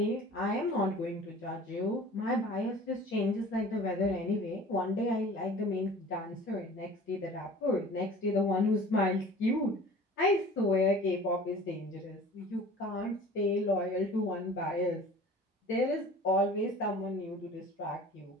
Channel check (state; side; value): normal; both; correlation 0.44